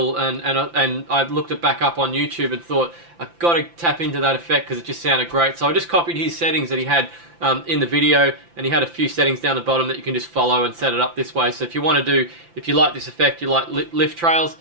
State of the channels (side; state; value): left; late; 5.9 ms